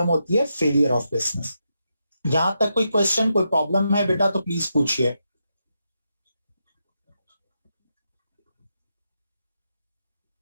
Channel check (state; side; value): inverted; both; correlation -0.85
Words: होती है फेलियर ऑफ बिजनेस। यहां तक कोई क्वेश्चन, कोई प्रॉब्लम है बेटा तो प्लीज पूछिए।